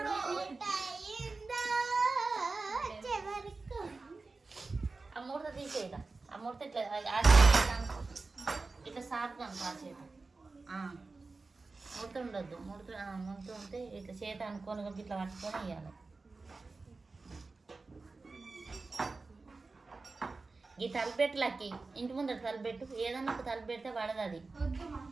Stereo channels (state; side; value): quieter; left; 3.8 dB